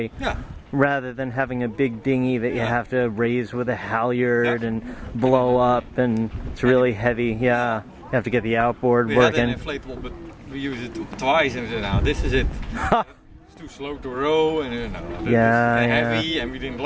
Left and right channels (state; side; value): identical; both; correlation 1.00